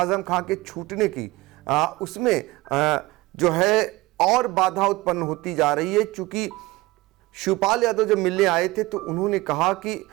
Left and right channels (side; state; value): left; quieter; 20.4 dB